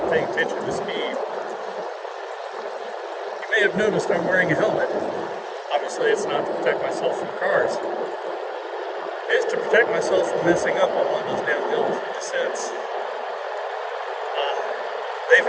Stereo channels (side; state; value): both; identical; correlation 1.00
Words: paying attention to speed. You may have noticed I'm wearing a helmet. Obviously it's not to protect myself from cars. It is to protect myself from messing up on one of those downhill descents. They've